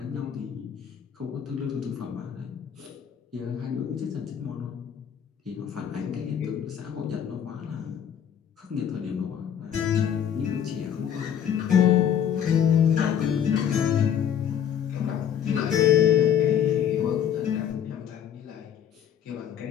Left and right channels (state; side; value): quieter; right; 9.0 dB